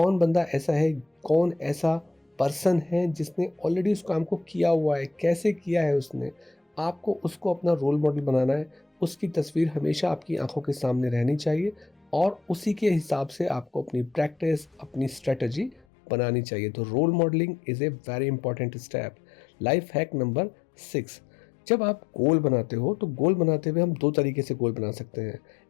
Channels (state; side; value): drops out; right; at 15.8 s